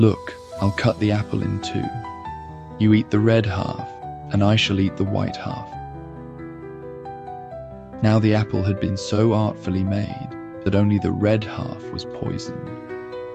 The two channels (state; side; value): identical; both; correlation 1.00